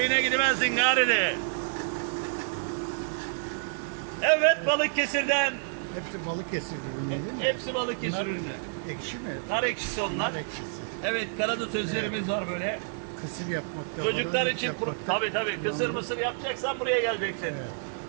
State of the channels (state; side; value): silent; left; digital silence